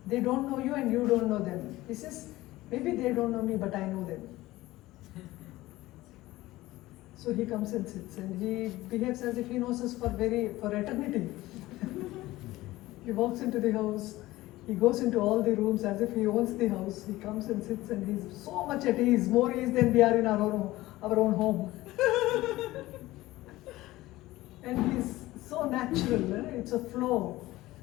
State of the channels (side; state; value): right; quieter; 17.7 dB